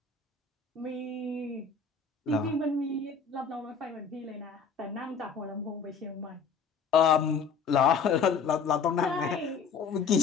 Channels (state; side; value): quieter; right; 5.7 dB